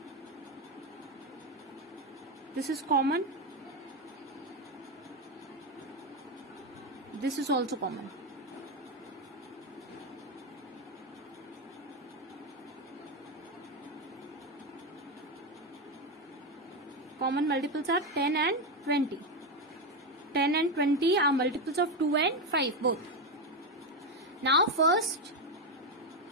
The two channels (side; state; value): both; normal; correlation 0.10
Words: This is common. This is also common. Common multiples are 10 and 20. 10 and 20 are multiples of 2 and 5 both. Now